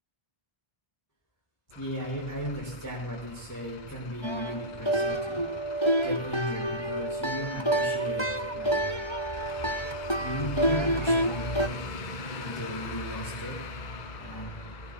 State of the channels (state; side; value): late; right; 1.3 ms